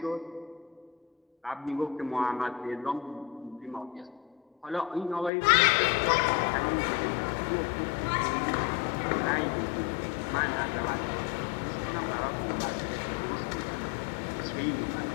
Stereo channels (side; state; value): right; drops out; at 5.3 s